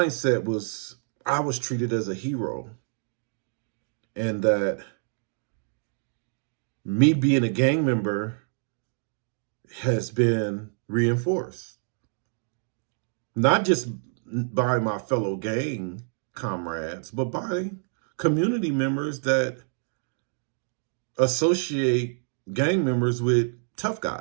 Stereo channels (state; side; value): silent; left; 60 dB below the other